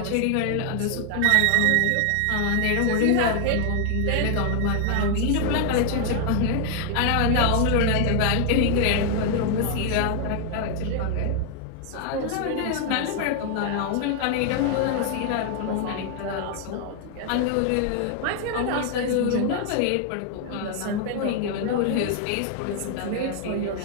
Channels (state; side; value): different; both; correlation 0.00